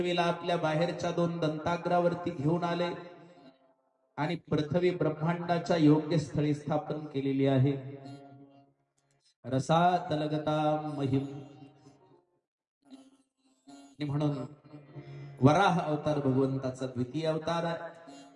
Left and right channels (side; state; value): both; identical; correlation 1.00